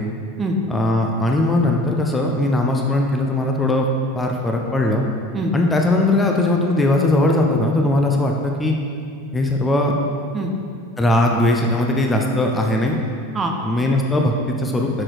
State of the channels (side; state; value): both; normal; correlation 0.51